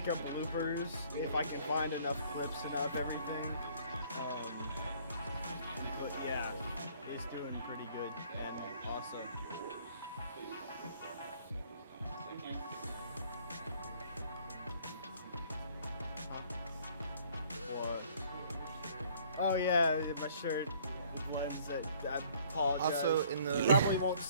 up bloopers if I can find enough clips and of everything. But yeah, it's doing pretty good and awesome. What? Oh yeah, my shirt blends that. I apologize. Also, in You the probably won't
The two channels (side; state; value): both; inverted; correlation -0.58